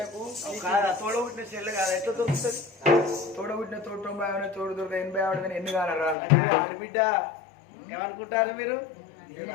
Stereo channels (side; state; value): right; drops out; at 6.2 s